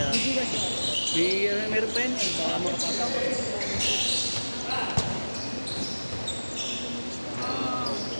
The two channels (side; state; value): both; inverted; correlation -1.00